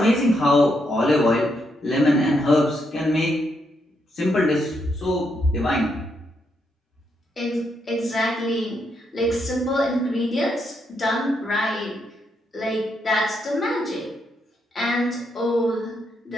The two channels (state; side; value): normal; both; correlation 0.78